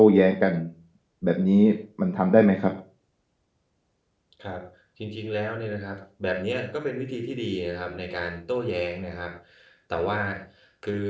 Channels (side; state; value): both; identical; correlation 1.00